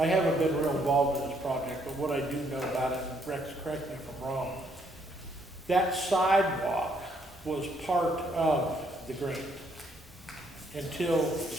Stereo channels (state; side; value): normal; both; correlation 0.70